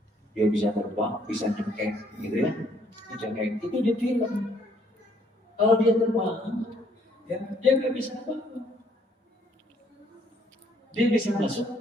Dia bisa terbang, bisa nyengkeng, gitu ya. Nyengkeng itu di film. Kalau dia terbang, ya dia nggak bisa apa-apa. Dia bisa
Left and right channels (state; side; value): normal; both; correlation 0.66